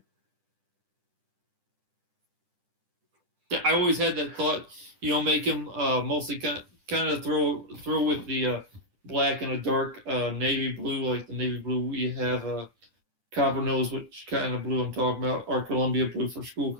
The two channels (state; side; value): late; left; 10 ms